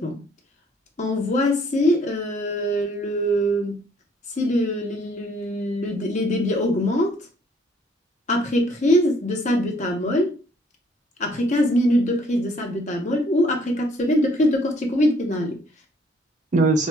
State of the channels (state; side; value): normal; both; correlation 0.63